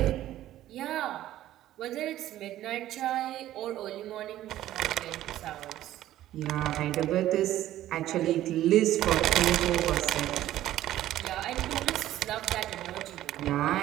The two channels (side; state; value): left; quieter; 13.6 dB